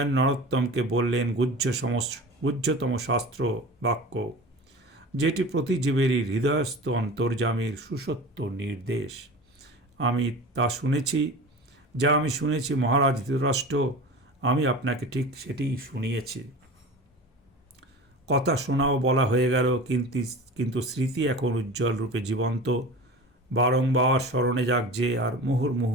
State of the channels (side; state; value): both; normal; correlation 0.34